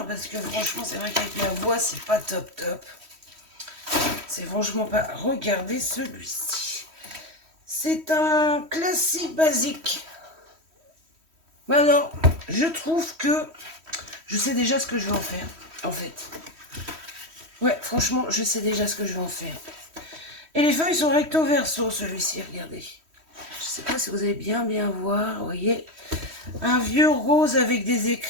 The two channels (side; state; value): left; late; 3.1 ms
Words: parce que franchement, c'est vrai qu'avec ma voix, c'est pas top. C'est franchement pas... Regardez celui-ci. C'est un classique basique. Alors, je trouve que je sais déjà ce que je vais en faire, en fait. Ouais, franchement, je sais déjà ce que je vais en faire. Et les feuilles sont recto verso, celui-ci, regardez. Je sais pas si vous allez bien voir, vous voyez. Un vieux rose avec des